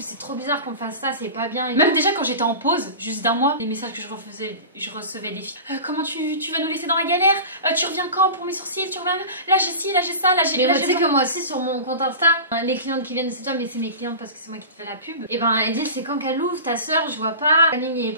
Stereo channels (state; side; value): inverted; both; correlation -0.32